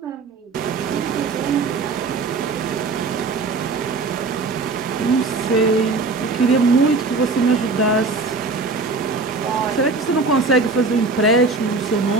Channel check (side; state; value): left; quieter; 3.8 dB